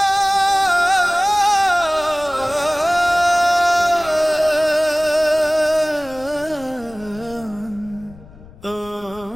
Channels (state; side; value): noise; left; rumble, 21 dB below the sound